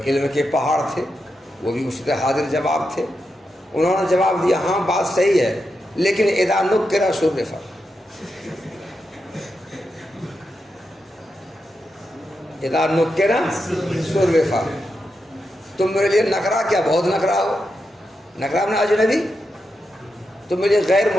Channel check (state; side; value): normal; both; correlation 0.87